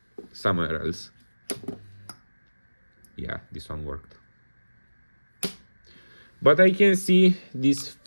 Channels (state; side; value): inverted; both; correlation -1.00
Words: somewhere else. Yeah, this one worked. But I can see these